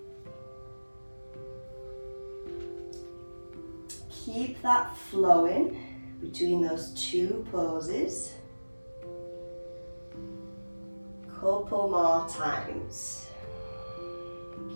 Keep that flowing between those two poses. Couple more times.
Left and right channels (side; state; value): both; inverted; correlation -1.00